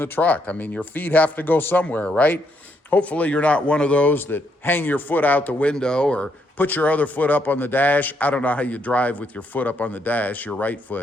truck. I mean, your feet have to go somewhere, right? Hopefully you're not one of those that hang your foot out the window or put your other foot up on the dash. I don't know how you drive with your foot up on the dash, your right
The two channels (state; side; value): normal; both; correlation 0.75